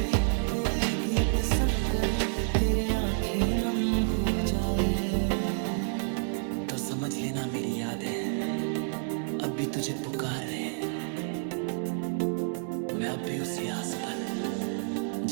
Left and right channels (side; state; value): left; silent; digital silence